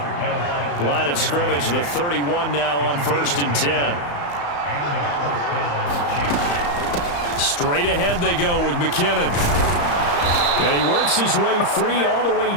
Line of scrimmage, the 31 now on 1st and 10. Straight ahead they go with McKinnon. And he works his way free all the way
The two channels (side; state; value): right; late; 35 ms